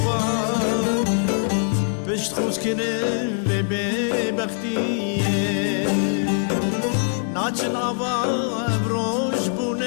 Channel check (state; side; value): silent; right; 60 dB below the other